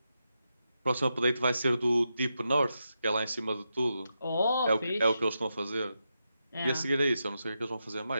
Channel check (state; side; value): inverted; both; correlation -0.87